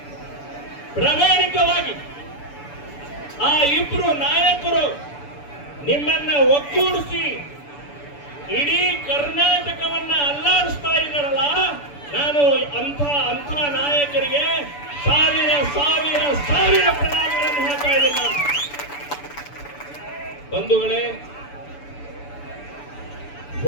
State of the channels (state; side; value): late; right; 6.9 ms